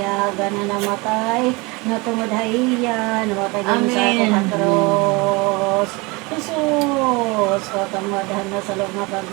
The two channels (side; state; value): left; quieter; 26.2 dB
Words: gana namatay, natumudhaiya, namatay din sa Amen. katros. Jesus, katamadahan na sa loob na